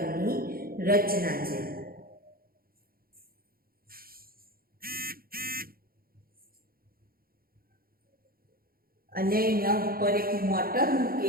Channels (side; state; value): left; late; 0.43 ms